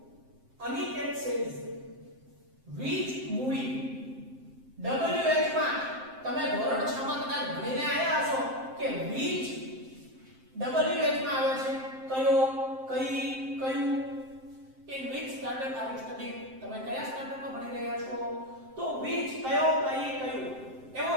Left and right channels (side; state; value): left; late; 7.6 ms